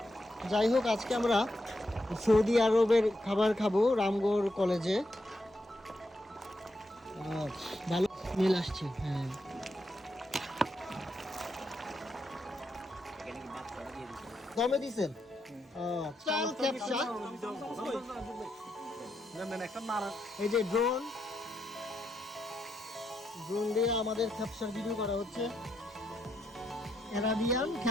যাই হোক, আজকে আমরা সৌদি আরবের খাবার খাবো রামগড় কলেজে। ভালো স্মেল আসছে। হ্যাঁ, দমে দিছেন চাল খেপসা। এই যে ড্রোন দিয়ে আমাদের খেপসার ভিডিও করা হচ্ছে। অ্যারাবিয়ান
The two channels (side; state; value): both; normal; correlation 0.81